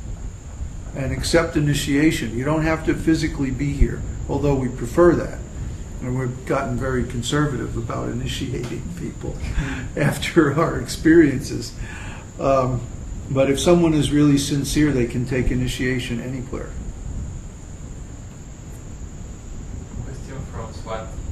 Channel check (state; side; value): identical; both; correlation 1.00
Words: and accept initiation. You don't have to physically be here, although we prefer that. And we've gotten very conservative about initiating people after our experiences. But if someone is really sincere, they can take initiation anywhere. Question from Swat.